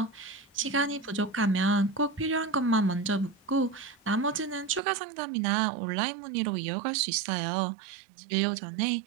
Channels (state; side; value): drops out; left; at 4.8 s